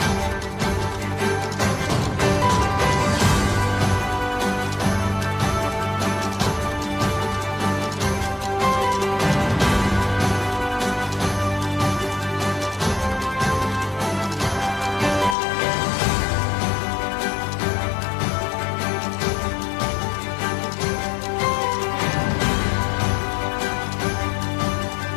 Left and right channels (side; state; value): right; drops out; at 15.4 s